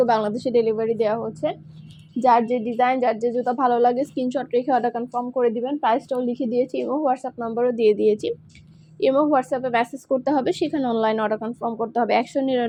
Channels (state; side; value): identical; both; correlation 1.00